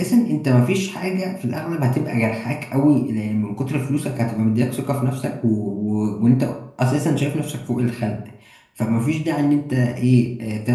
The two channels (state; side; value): identical; both; correlation 1.00